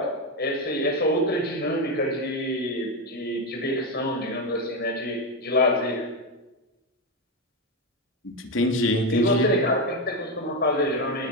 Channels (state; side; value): normal; both; correlation 0.10